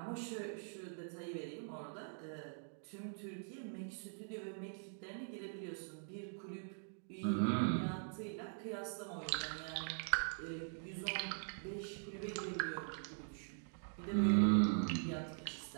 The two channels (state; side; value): silent; left; digital silence